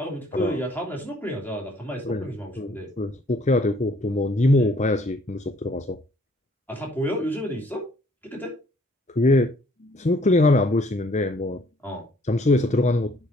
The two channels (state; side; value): normal; both; correlation 0.61